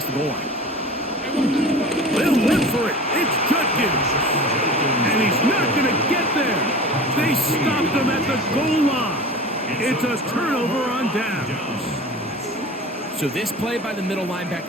the goal line. They'll look for it. It's Judkins. And he's not going to get there. They stopped him at the goal line. It's a turnover on downs. So this play by the middle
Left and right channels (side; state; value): both; normal; correlation 0.37